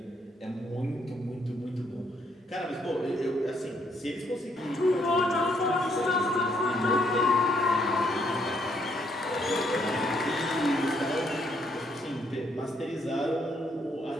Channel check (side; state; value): both; normal; correlation 0.71